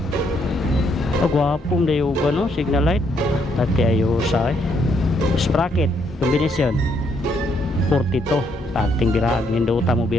Oh, guwapong dayo no signal light. Tati ayo sa eh. Sprocket combination 42. Tanting birag ninduta mo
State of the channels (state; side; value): normal; both; correlation 0.73